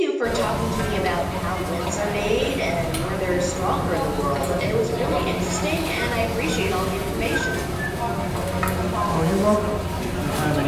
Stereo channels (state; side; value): identical; both; correlation 1.00